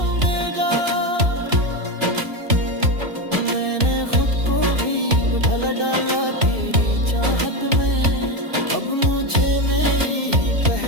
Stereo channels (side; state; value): left; late; 2.6 ms